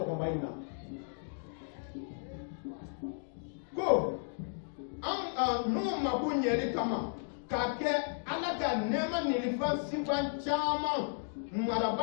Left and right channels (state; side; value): silent; right; digital silence